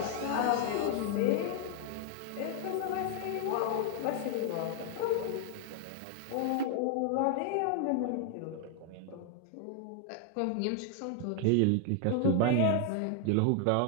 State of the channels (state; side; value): different; both; correlation 0.00